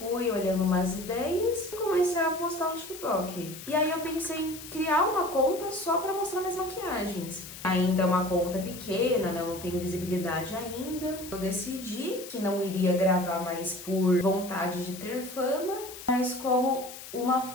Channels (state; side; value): noise; left; hiss, 13 dB below the sound